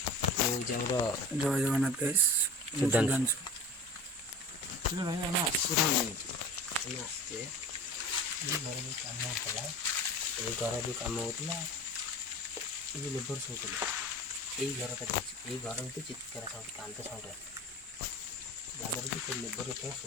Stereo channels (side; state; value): both; normal; correlation 0.36